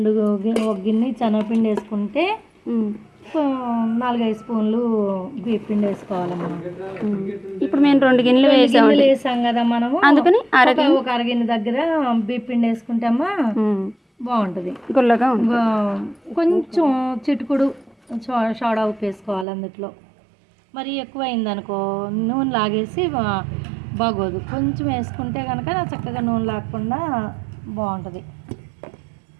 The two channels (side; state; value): left; drops out; at 19.5 s